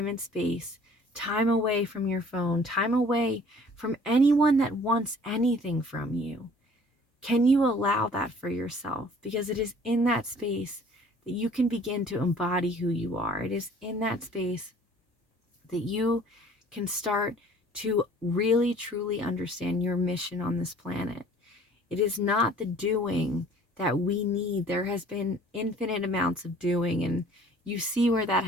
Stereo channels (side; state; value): both; normal; correlation 0.53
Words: and space, time away from your phone, time away from anyone that wants anything from you. Can you allow that for yourself? Because it is in that space that you can begin to embody who you are. It is in that space that you can start to really truly understand your mission on this planet. It is not the doing that we need. There has been infinite amounts of doing, and you see where that